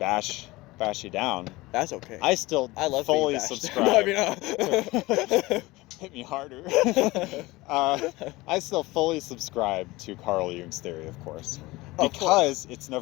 you down. That's okay. I love fully being bashed. subscribe. No, I mean, Hit me harder. I still fully subscribe to Carl Jung's theory, of course. Because it's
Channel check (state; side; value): quieter; right; 20.6 dB